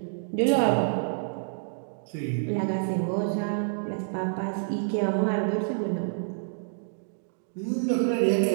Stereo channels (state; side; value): silent; left; digital silence